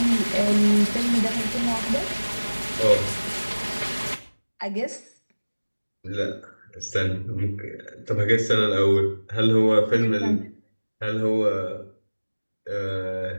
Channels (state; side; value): inverted; both; correlation -1.00